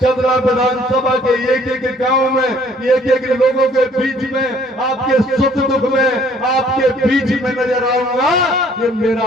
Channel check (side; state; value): both; normal; correlation 0.59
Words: विधानसभा के एक गांव में, एक लोगों के बीच में, आपके सुख दुख में आपके बीच में नजर आऊंगा। ये मेरा